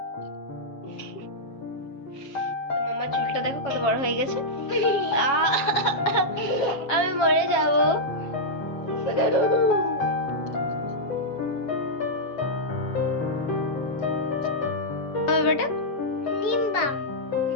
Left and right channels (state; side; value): late; right; 7.3 ms